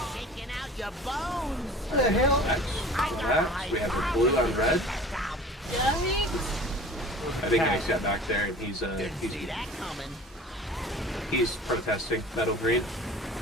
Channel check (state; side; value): normal; both; correlation 0.42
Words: Shaking out your bones. What the hell? Next, we have the blue on red. I think Nick's got back there, and he's See that coming. he's protesting metal green.